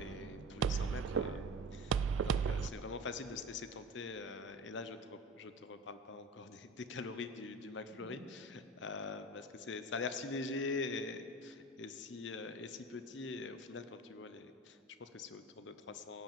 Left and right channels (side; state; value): both; normal; correlation 0.34